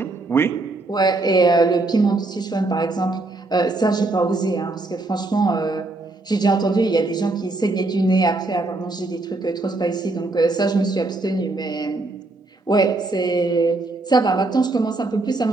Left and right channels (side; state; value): left; quieter; 3.1 dB